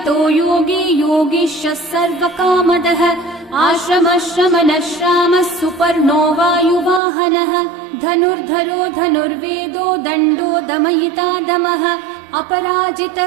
योगी योगीशः सर्वकामदः आश्रमश्रमणश्रामः सुपर्णो वायुवाहनः धनुर्धरो धनुर्वेदो दण्डो दमयिता दमः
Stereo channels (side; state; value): left; drops out; at 7.0 s